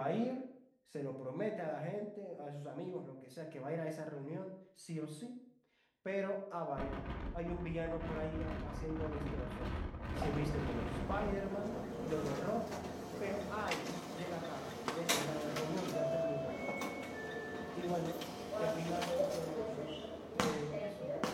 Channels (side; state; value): both; identical; correlation 1.00